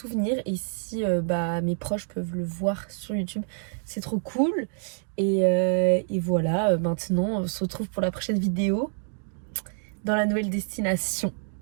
Et si bah mes proches peuvent le voir sur YouTube, c'est trop cool. Et voilà, maintenant on se retrouve pour la prochaine vidéo dans la nouvelle destination.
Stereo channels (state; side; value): silent; left; digital silence